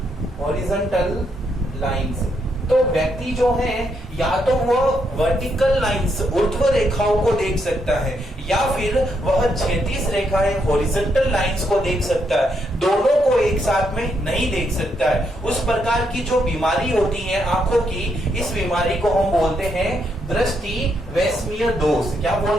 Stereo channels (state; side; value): normal; both; correlation 0.77